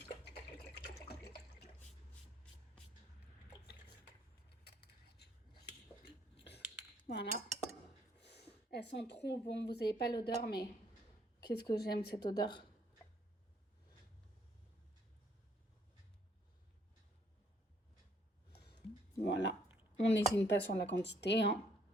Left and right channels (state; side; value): normal; both; correlation 0.66